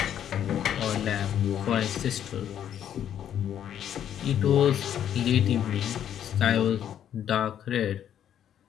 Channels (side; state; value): right; quieter; 10.0 dB